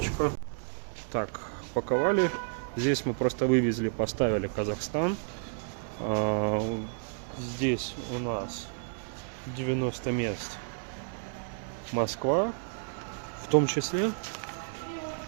Так, паковали. Здесь мы просто вывезли, поставили Казахстан. Здесь у нас 90 мест Москва, в том числе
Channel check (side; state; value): left; silent; digital silence